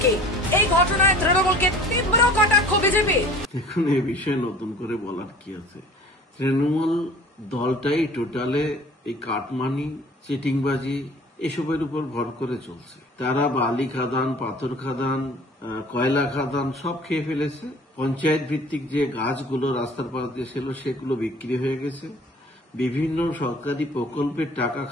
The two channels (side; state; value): both; normal; correlation 0.47